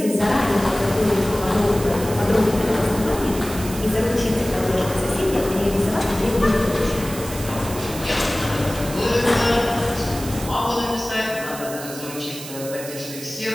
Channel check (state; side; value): noise; right; hiss, 12 dB below the sound